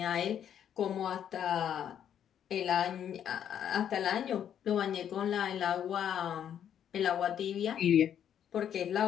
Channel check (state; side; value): quieter; right; 9.4 dB